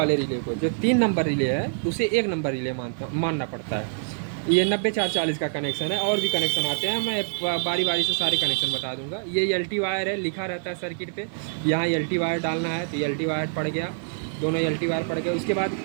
रिले को, जो 3 नंबर रिले है, उसे 1 नंबर रिले मानना पड़ता है। ये 90-440 का कनेक्शन है। और भी कनेक्शन आते हैं, मैं बारी बारी से सारे कनेक्शन बता दूंगा। ये ELT वायर है, लिखा रहता है सर्किट पे, यहाँ ELT वायर डालना है तो ELT वायर पड़ गया, दोनों ELT वायर पड़ गए। उसके बाद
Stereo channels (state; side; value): silent; left; digital silence